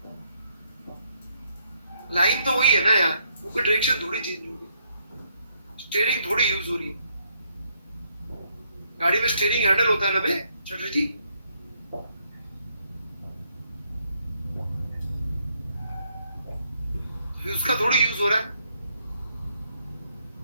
लाइन तो वही है ना यार, वो कोई डायरेक्शन थोड़ी चेंज हो रही, स्टीयरिंग थोड़ी यूज हो रही है। गाड़ी में स्टीयरिंग हैंडल होता है ना बे चटर्जी जी, उसका थोड़ी यूज हो रहा है।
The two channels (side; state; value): both; inverted; correlation -0.73